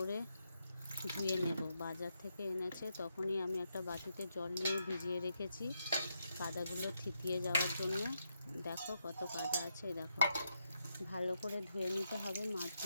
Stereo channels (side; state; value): both; inverted; correlation -0.82